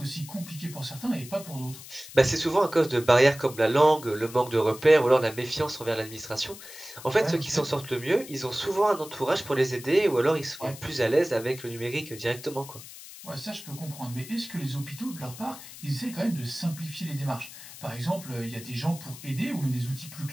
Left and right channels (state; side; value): noise; left; hiss, 15 dB below the sound